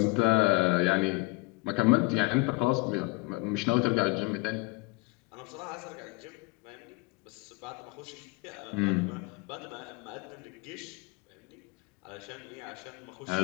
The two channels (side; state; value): right; quieter; 26.1 dB